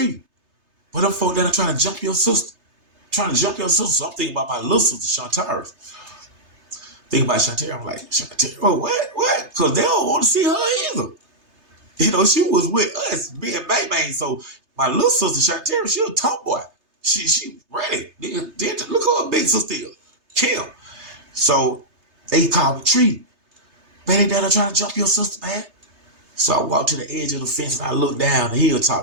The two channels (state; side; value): late; left; 3.3 ms